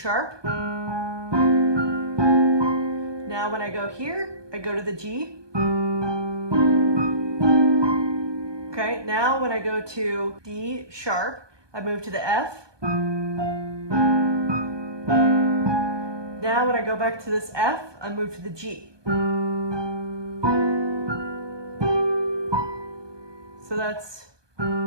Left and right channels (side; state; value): left; late; 1.2 ms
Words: Now when I go here, I go to the G. Okay, now when I go to D sharp, I move to the F. Now when I go back to this F, I move to the G. So that's